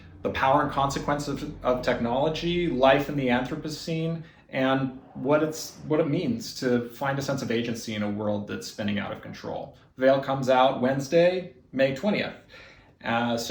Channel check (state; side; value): identical; both; correlation 1.00